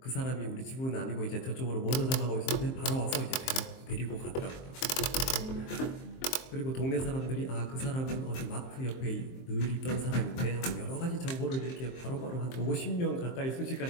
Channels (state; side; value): late; right; 23 ms